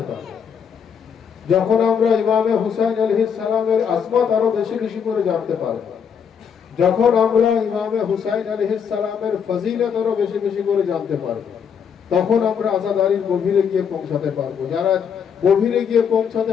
পারবো, যখন আমরা ইমামে হুসাইন আলাইহিস সালামের আজমত আরো বেশি বেশি করে জানতে পারবো, যখন আমরা ইমামে হুসাইন আলাইহিস সালামের ফজিলত আরো বেশি বেশি করে জানতে পারবো, তখন আমরা আজাদারির গভীরে গিয়ে পৌঁছাতে পারবো। যারা গভীরে গিয়ে পৌঁছাতে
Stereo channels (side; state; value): right; quieter; 7.2 dB